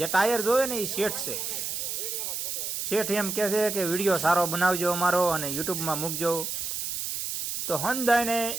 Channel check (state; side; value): noise; right; hiss, 3 dB below the sound